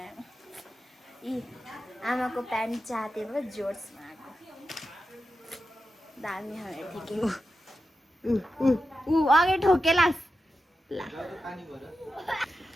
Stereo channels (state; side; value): normal; both; correlation 0.90